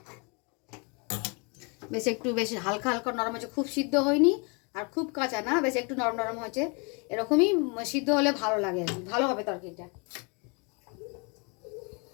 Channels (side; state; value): right; quieter; 32.9 dB